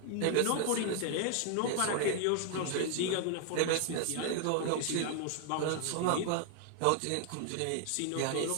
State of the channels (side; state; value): both; different; correlation 0.00